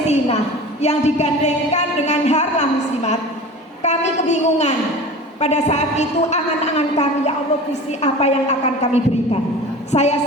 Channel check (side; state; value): both; normal; correlation 0.36